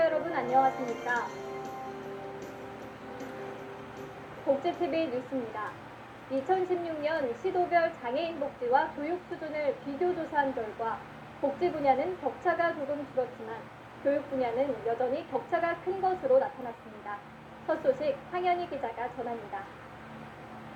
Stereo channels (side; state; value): both; identical; correlation 1.00